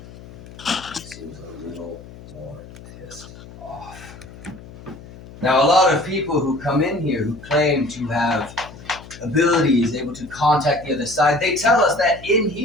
seems a little more pissed off. Now, a lot of people who come in here who claim to have abilities, able to contact the other side, they tell us that in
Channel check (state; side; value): noise; left; hum, 18 dB below the sound